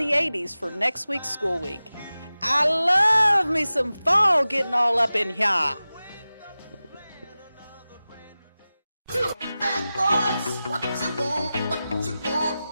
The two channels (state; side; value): inverted; both; correlation -0.96